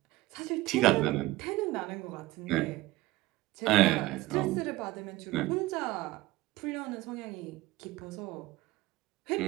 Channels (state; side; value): quieter; left; 18.9 dB